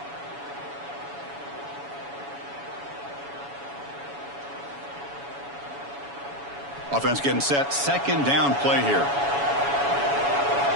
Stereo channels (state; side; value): late; left; 7.1 ms